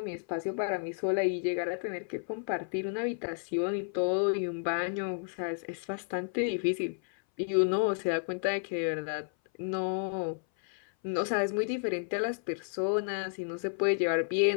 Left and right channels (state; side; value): silent; right; 57 dB below the other